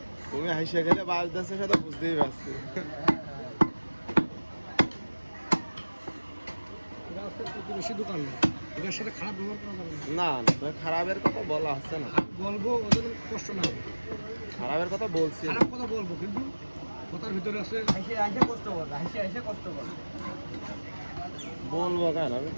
তুমি হাসিয়া গেলে বাজদাসের সাথে বুঝতেই পারছি। বেশি দোকান না, ওদের সাথে খারাপ ব্যবহার করা যাবে না। না না তো খারাপের কথা বলা হচ্ছে না, বলবো ওদের কষ্ট না হবে। খারাপের কথা বলছি না। খারাপ কথা বলবো কিন্তু কথার ভিতরে আছে আইসে আইসে কষ্ট করবে, আইসে আইসে কষ্ট করবে। বলবো কেন আমি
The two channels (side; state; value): both; inverted; correlation -1.00